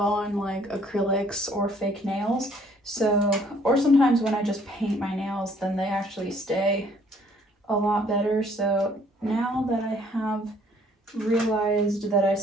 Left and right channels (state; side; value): normal; both; correlation 0.61